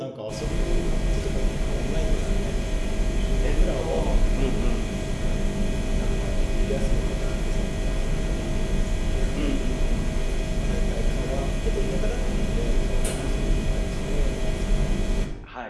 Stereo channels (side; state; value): both; identical; correlation 1.00